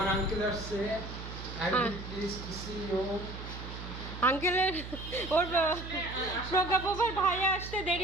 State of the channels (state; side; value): noise; right; hum, 10 dB below the sound